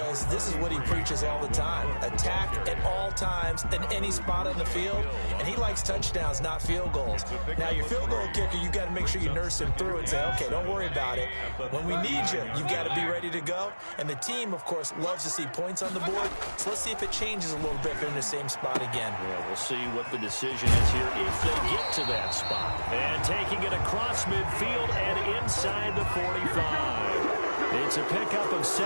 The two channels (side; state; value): both; inverted; correlation -1.00